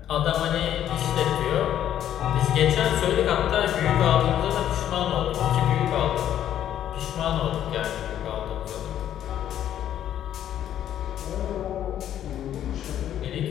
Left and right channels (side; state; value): right; quieter; 10.9 dB